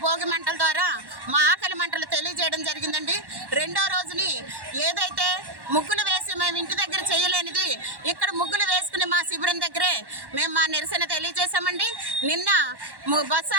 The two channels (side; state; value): left; late; 1.1 ms